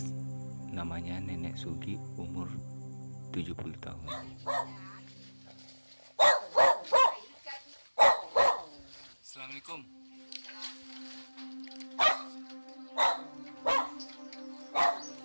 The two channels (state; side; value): inverted; both; correlation -1.00